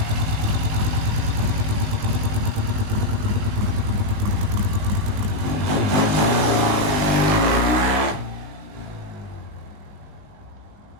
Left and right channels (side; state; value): left; late; 20 ms